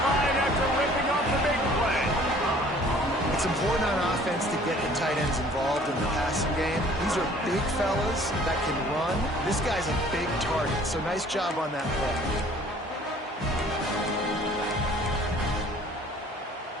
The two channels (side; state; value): both; normal; correlation 0.53